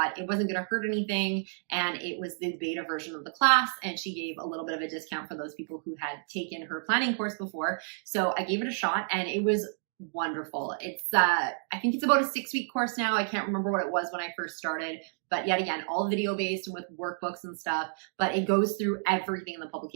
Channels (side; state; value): left; silent; digital silence